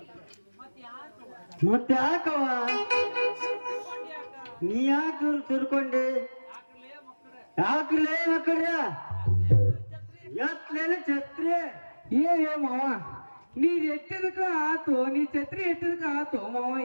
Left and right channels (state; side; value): inverted; both; correlation -1.00